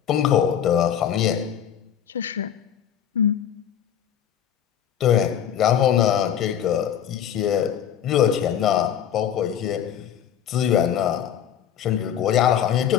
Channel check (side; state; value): right; quieter; 9.4 dB